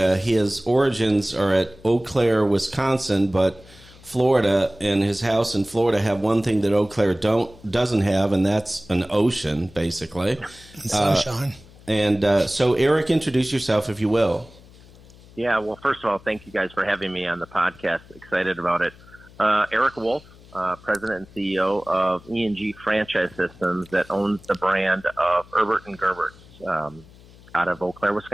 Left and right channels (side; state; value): left; noise; hum, 23 dB below the sound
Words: His origins are at Eau Claire, Wisconsin, but Florida and his house in Florida have one thing that Eau Claire doesn't have, and that's an ocean, basically. Sunshine. So, Eric, introduce yourself, if you will. Yeah, well, first of all, thank you guys for having me on the podcast. Excited about it. Eric Wolfe, President and CEO of E&G Franchise Systems that owns the brand of Erbert and Gerbert out of Eau Claire,